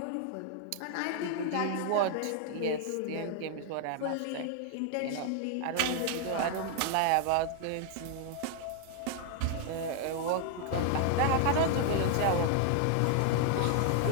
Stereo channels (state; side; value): different; both; correlation 0.00